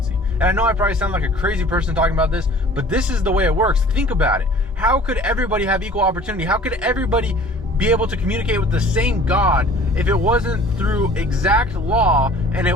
And I know I probably sound like a crazy person talking about this, but this is the way it works. Think about it. How could everybody have equal opportunity? How could everybody be able to communicate with the same God if it wasn't through exact law and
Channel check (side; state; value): both; normal; correlation 0.48